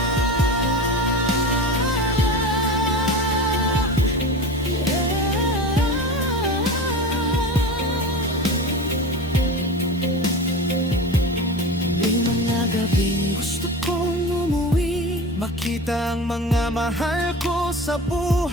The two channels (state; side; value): normal; both; correlation 0.30